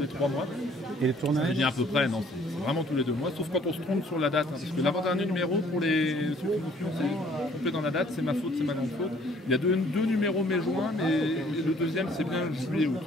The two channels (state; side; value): normal; both; correlation 0.59